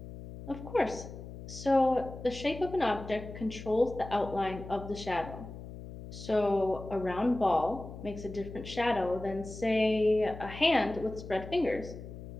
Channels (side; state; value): left; noise; hum, 12 dB below the sound